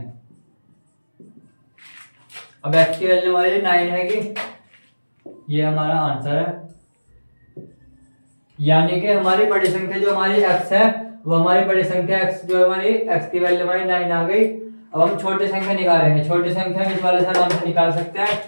अब x की वैल्यू हमारी 9 है कि ये हमारा आंसर है, यानी कि हमारी बड़ी संख्या जो हमारी x है वो हमारी बड़ी संख्या x जो हमारी x की वैल्यू हमारी 9 आ गई। अब हम छोटी संख्या निकालेंगे, छोटी संख्या इस वाले से आराम से निकाल सकते हैं।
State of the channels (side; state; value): both; inverted; correlation -1.00